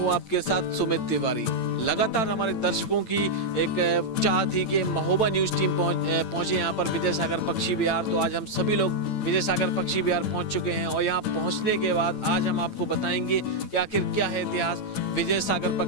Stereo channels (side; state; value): right; late; 8.9 ms